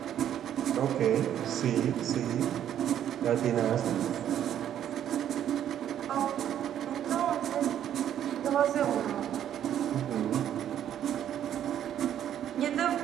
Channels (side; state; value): left; quieter; 10.4 dB